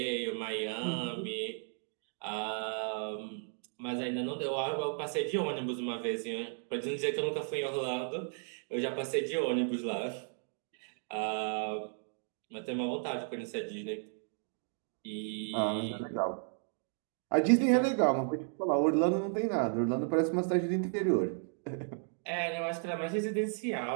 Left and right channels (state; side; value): silent; left; 55 dB below the other